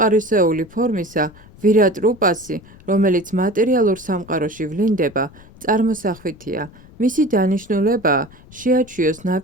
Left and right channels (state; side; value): noise; left; rumble, 22 dB below the sound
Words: ფორმისა, ვირატ რუპასი, რომელიც მატერიალურ სამყაროში ვლინდება, წარმოსახვითია. მისი დანიშნულებაა შეაჩვიოს